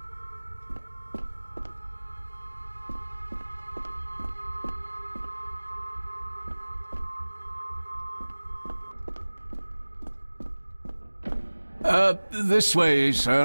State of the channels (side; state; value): both; inverted; correlation -1.00